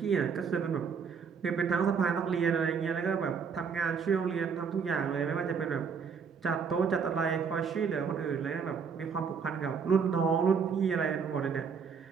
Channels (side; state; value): left; quieter; 6.2 dB